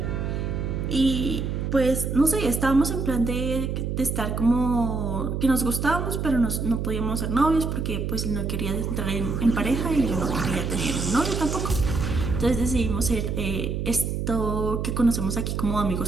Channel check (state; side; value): noise; right; hum, 2 dB below the sound